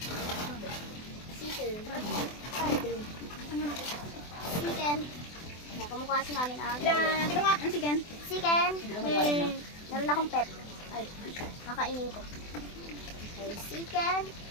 Chicken. Chicken. Yan, kumukha kasi namin ang Tignan nga, ang chicken. chicken. Meron akong pep. Ay, kakainin ko. Okay, chicken.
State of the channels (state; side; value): late; right; 24 ms